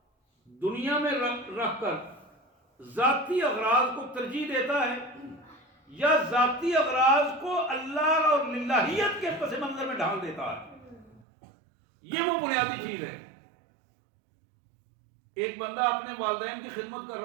دنیا میں رکھ کر ذاتی اغراض کو ترجیح دیتا ہے یا ذاتی اغراض کو اللہ اور للہیت کے پس منظر میں ڈھال دیتا ہے۔ یہ وہ بنیادی چیز ہے۔ ایک بندہ اپنے والدین کی خدمت کر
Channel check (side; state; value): left; drops out; at 11.2 s